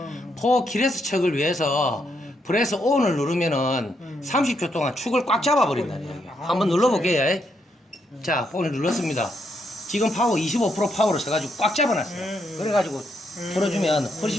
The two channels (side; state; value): both; normal; correlation 0.78